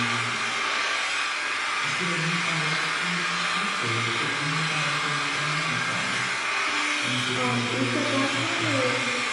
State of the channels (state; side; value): identical; both; correlation 1.00